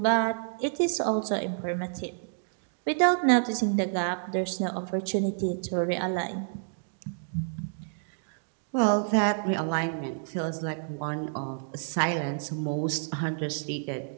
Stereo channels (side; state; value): left; silent; digital silence